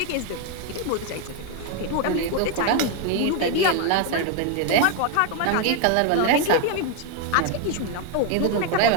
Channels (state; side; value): different; both; correlation 0.01